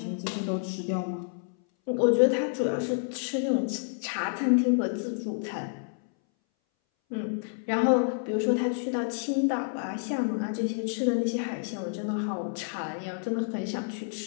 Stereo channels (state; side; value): silent; right; 59 dB below the other